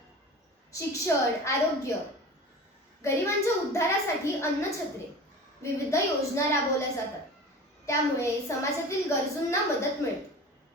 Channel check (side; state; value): both; normal; correlation 0.36